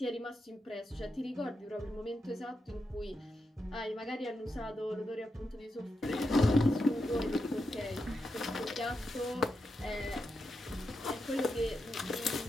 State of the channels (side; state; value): both; normal; correlation 0.86